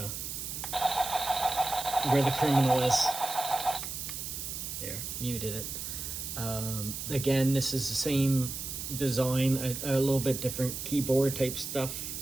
the criminal is. There, muted it. Again, this is the same design, a little bit different keyboard type stuff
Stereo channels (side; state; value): right; noise; hiss, 6 dB below the sound